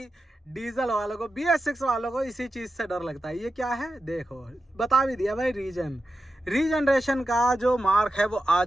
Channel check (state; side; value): normal; both; correlation 0.91